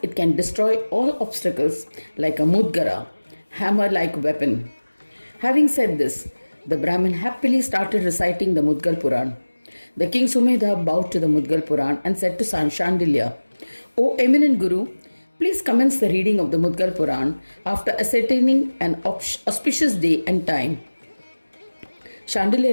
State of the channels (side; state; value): both; inverted; correlation -1.00